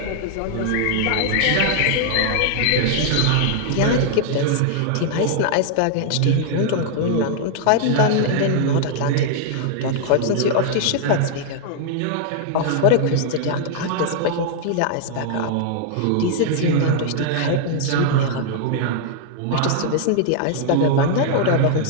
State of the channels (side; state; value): both; different; correlation -0.01